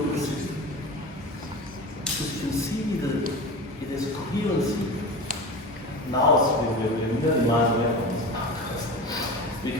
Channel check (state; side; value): normal; both; correlation 0.30